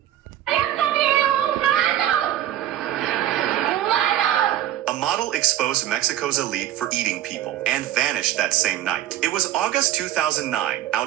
A model exposed Mexico's elite for eating people and vanished that same night. It was August 2009,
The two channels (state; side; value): quieter; left; 12.3 dB